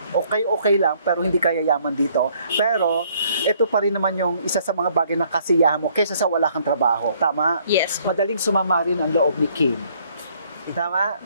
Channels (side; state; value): both; inverted; correlation -0.64